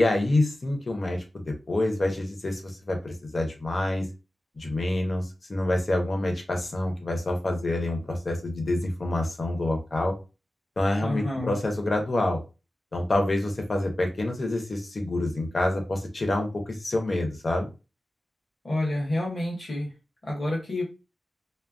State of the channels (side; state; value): both; normal; correlation 0.95